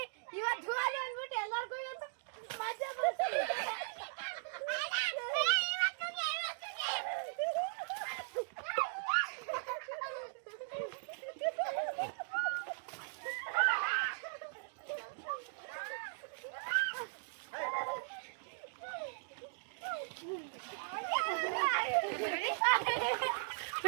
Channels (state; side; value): silent; left; digital silence